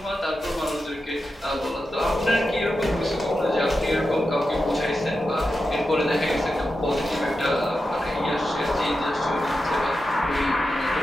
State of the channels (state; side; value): normal; both; correlation 0.90